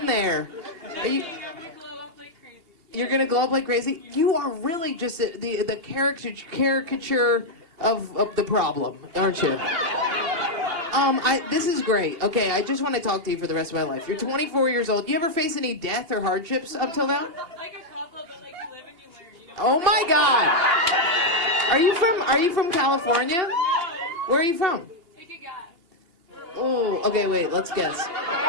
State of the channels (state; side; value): late; left; 2.8 ms